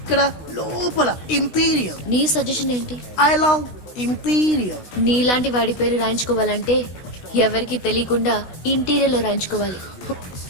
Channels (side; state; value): right; late; 16 ms